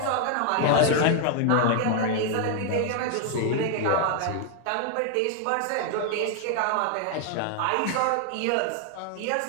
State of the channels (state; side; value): different; both; correlation 0.00